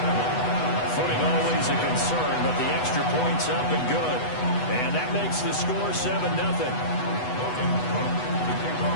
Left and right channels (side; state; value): right; late; 8.1 ms